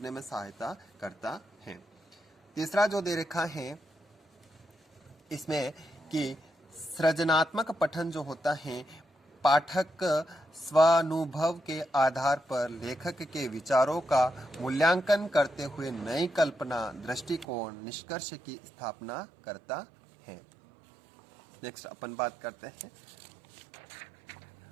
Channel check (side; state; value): left; drops out; at 17.4 s